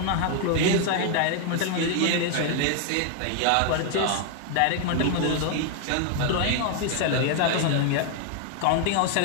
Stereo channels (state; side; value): different; both; correlation 0.00